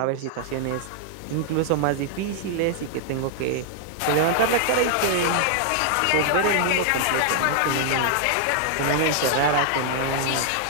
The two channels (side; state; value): both; different; correlation -0.01